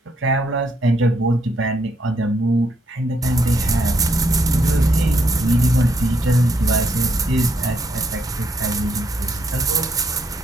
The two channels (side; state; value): both; normal; correlation 0.74